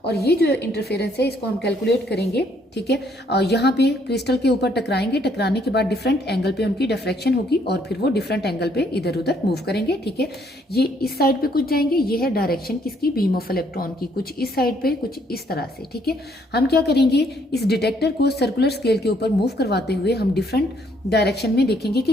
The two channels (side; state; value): both; normal; correlation 0.67